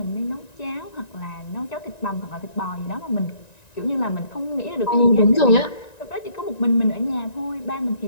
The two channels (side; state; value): right; late; 1.9 ms